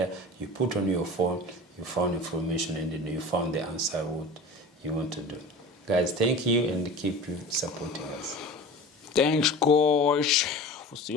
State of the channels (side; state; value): both; normal; correlation 0.36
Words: you put on your phone, you found information, and then you found the answer what you want to do. Guys, thank you, and keep supporting us. Thanks, guys. We'll see